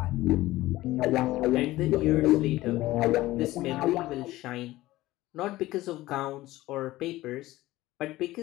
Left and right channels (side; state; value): right; quieter; 17.1 dB